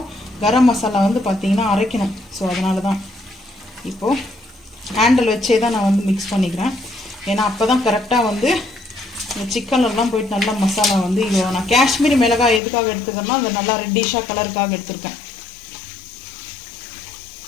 கரம் மசாலா வந்து பார்த்தீங்கன்னா அரைக்கணும். ஸோ அதனால தான் இப்போ ஹேண்டில் வச்சே தான் நான் வந்து மிக்ஸ் பண்ணிக்கிறேன். ஏன்னா அப்போ தான் கரெக்டாக வந்து இந்த சிக்கன்லாம் போயிட்டு நல்லா மசாலா வந்து இது நான் காஷ்மீரி மிளகாய் எதுக்காக எடுத்துக்கிறேன்னா அந்த நல்லா ரெட்டிஷாக கலருக்காக எடுத்துருக்கேன்.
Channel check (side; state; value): right; drops out; at 12.6 s